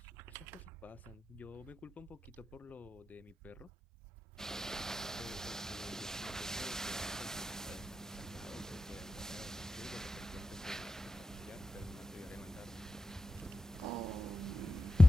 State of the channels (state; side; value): normal; both; correlation 0.92